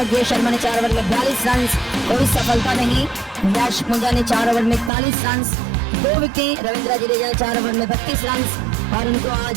शर्मा ने 4 ओवर में 42 रन, कोई सफलता नहीं। यश पुंजा ने 4 ओवर में 41 रन, 2 विकेट। रविंद्र जडेजा ने 4 ओवर में 32 रन और उनको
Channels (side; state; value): left; drops out; at 4.9 s